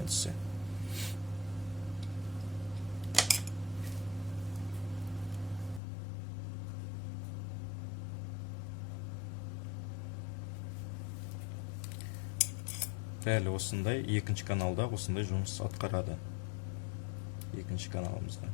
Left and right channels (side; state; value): right; drops out; at 5.8 s